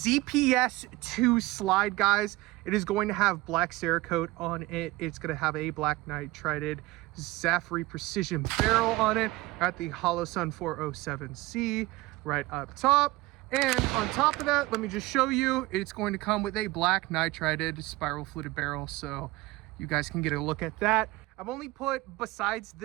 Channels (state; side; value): quieter; left; 20.0 dB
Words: slide, guys. It is going to have black Cerakote on it. It's going to have a black nitrided Zaffiri Precision barrel on it at the Holosun 407C right up top. And on top of that, let me just show you, it's going to come with a black nitrided spiral fluted barrel. So you guys can get a look at that. I've only put, besides